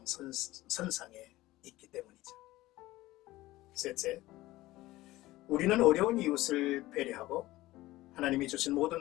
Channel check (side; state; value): right; quieter; 17.6 dB